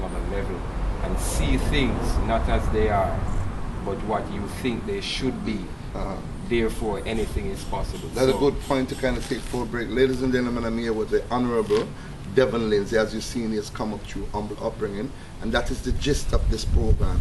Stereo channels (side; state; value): both; identical; correlation 1.00